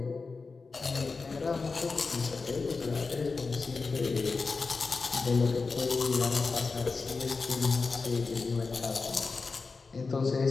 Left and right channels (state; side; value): quieter; right; 4.3 dB